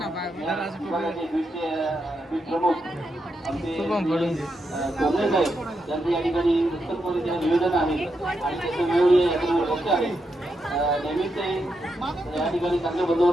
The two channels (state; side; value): normal; both; correlation 0.84